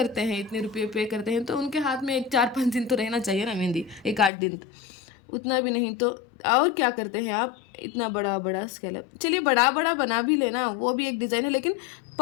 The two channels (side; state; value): right; drops out; at 4.3 s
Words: हैं, इतने रुपये पे करते हैं, तो उनके हाथ में 4-5 दिन तो रहना चाहिए ना मेहंदी, 1-8 दिन, उतना भी नहीं तो। और क्या करते हैं आप, इतना बड़ा बड़ा स्कैलप, चलिए बड़ा बड़ा बना भी लेना, वो भी एक डिज़ाइन है, लेकिन